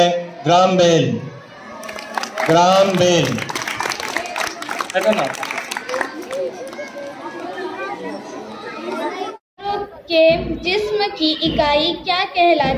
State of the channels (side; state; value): both; identical; correlation 1.00